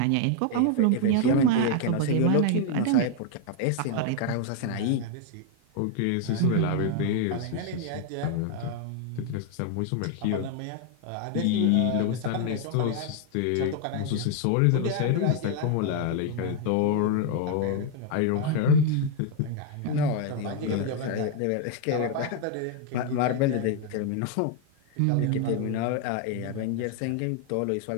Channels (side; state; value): both; different; correlation 0.00